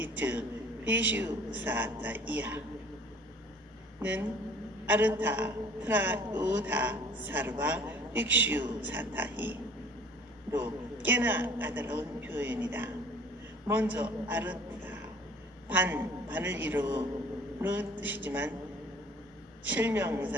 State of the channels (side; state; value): both; normal; correlation 0.50